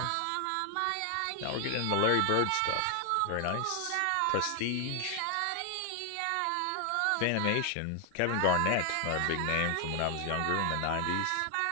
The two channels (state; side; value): different; both; correlation 0.00